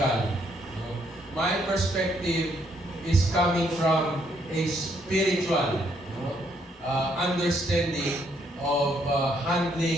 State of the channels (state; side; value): normal; both; correlation 0.71